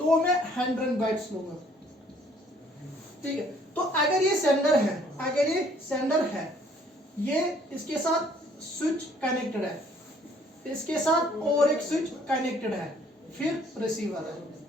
वो मैं 100 बाइट्स लूंगा, ठीक है। तो अगर ये सेंडर है, अगर ये सेंडर है, ये इसके साथ स्विच कनेक्टेड है, इसके साथ और एक स्विच कनेक्टेड है, फिर रिसीवर है,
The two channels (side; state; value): both; normal; correlation 0.61